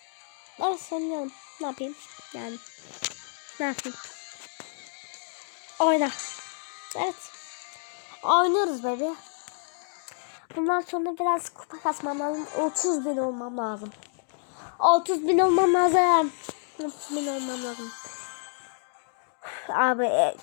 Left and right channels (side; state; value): right; silent; digital silence